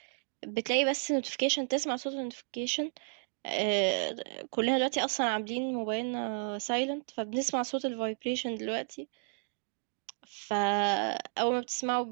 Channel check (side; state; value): left; silent; digital silence